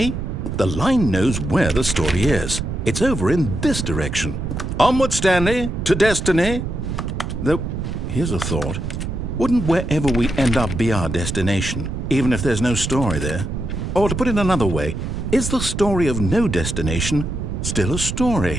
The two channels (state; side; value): noise; right; rumble, 4 dB below the sound